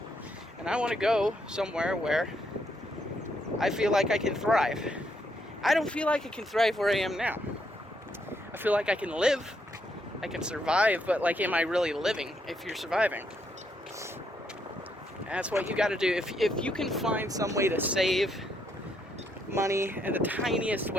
And I want to go somewhere where I feel like I can thrive. I don't feel like I can thrive where I am now. I feel like I can live, I can survive, but like, am I really living if you're surviving? And that's what you got to do. If you can find some way to save money in the tiniest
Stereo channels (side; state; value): both; normal; correlation 0.75